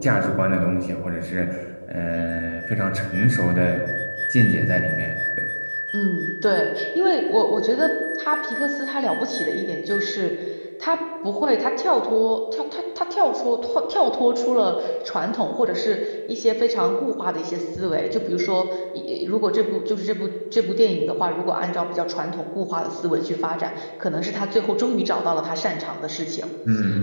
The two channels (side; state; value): both; inverted; correlation -1.00